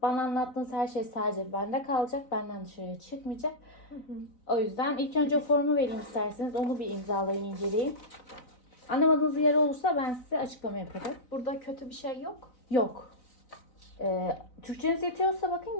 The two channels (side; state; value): right; late; 4.0 ms